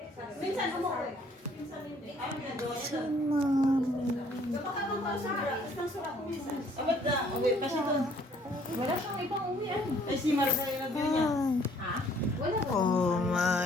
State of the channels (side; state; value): both; normal; correlation 0.60